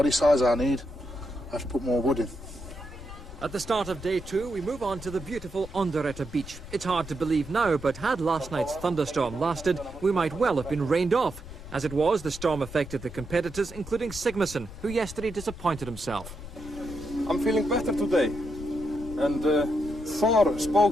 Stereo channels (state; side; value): noise; left; rumble, 14 dB below the sound